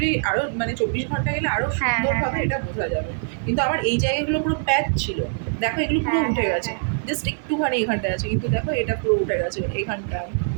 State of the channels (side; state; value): left; silent; digital silence